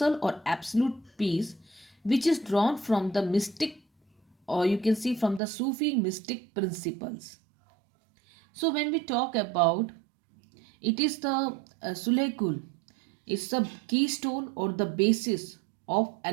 or absolute peace, which is drawn from the mystic, or you can see from the Sufi mystic principles. So when we talk about it is the Sulhekul, it's the keystone or the basis of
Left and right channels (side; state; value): left; drops out; at 5.4 s